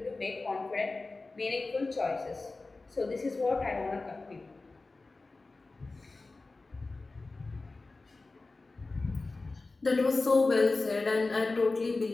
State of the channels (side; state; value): right; quieter; 3.5 dB